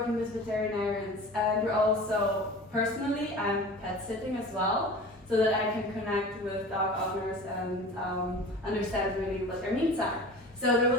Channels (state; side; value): normal; both; correlation 0.38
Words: with veterinarians. And we're also, personally, I'm pet sitting as well, so that I can connect with dog owners and understand really what their needs are. So there